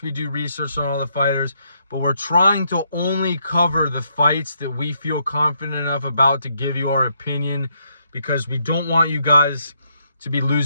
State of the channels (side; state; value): both; inverted; correlation -0.75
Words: we do research on all the fighters. But we're trying to only cover the fights that we feel confident enough about to give you our opinion, because we don't want you guys to be